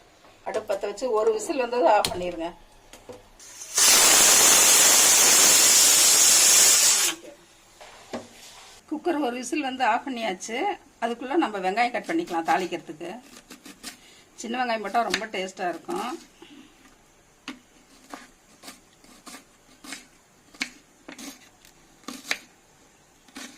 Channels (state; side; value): identical; both; correlation 1.00